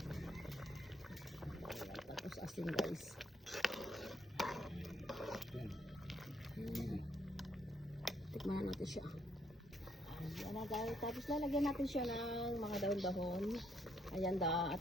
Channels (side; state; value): both; normal; correlation 0.71